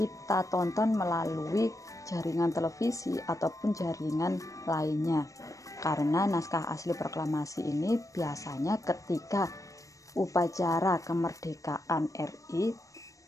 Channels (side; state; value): right; late; 0.16 ms